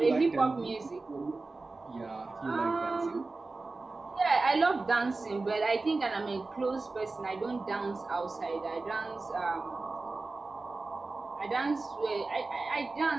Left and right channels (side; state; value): left; quieter; 3.6 dB